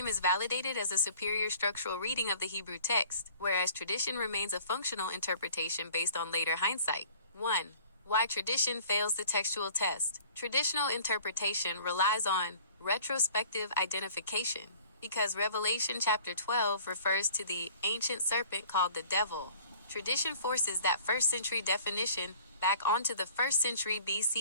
is validated as a superior structural reading of the Hebrew text, whereas tradition remains a functional interpretation based on later hindsight. 1. Why tradition fails the textual test. Traditional interpretation relies on retrospective identification, because Revelation chapter 12 refers to the ancient serpent called the devil. Tradition forces that first-century definition back onto the first-century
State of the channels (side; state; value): both; inverted; correlation -0.51